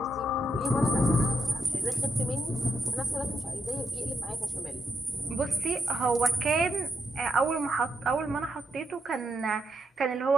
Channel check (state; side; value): normal; both; correlation 0.81